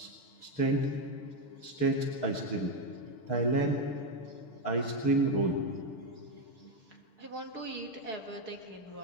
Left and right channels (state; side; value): late; right; 6.8 ms